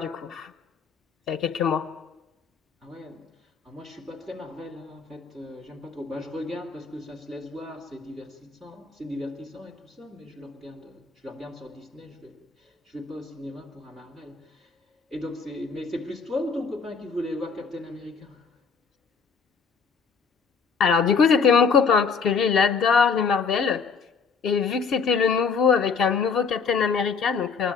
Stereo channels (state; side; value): quieter; right; 5.5 dB